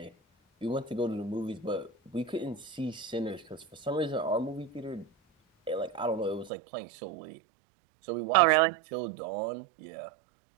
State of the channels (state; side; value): drops out; left; at 6.5 s